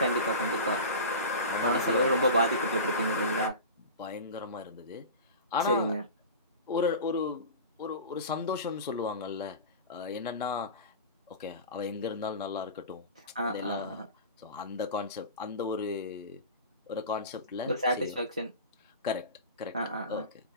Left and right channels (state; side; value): inverted; both; correlation -0.31